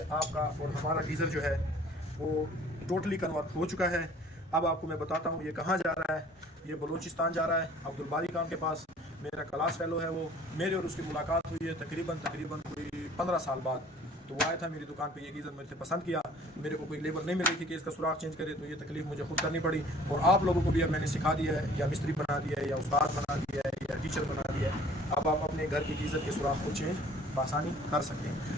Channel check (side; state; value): both; normal; correlation 0.52